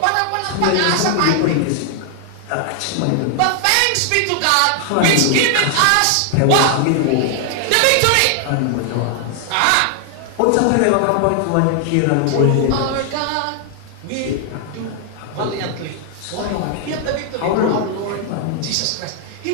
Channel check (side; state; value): both; different; correlation 0.00